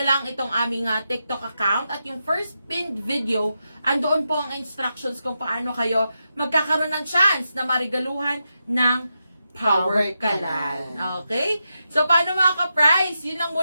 lang itong aming TikTok account at yung first pinned video, andoon po ang instructions kung paano kayo magkakaroon ng chance na marigaluhan ng power kalan. Okay? So, paano mga ka-price? Yun lang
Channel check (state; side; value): inverted; both; correlation -0.87